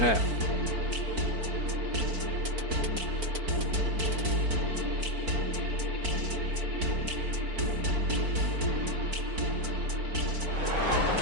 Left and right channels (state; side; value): late; left; 4.5 ms